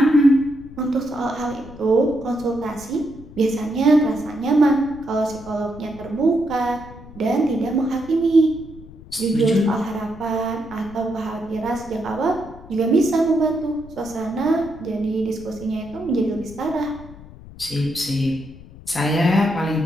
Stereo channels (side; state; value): left; noise; rumble, 18 dB below the sound